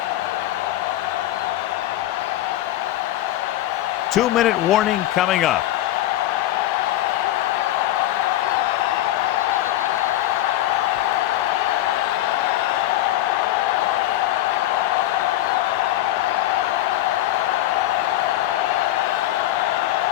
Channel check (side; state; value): right; quieter; 14.4 dB